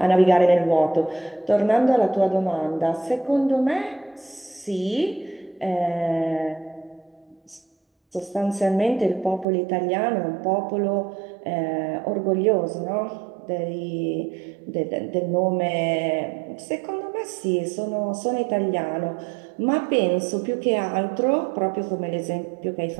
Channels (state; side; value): drops out; left; at 9.5 s